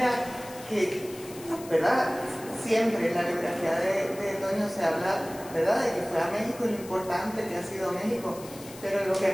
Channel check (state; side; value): noise; left; hiss, 17 dB below the sound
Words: que, ¿verdad? Siempre en la biografía de Toño se habla, ¿verdad?, de que fue a México y lo importante que ha sido México. Pero lo que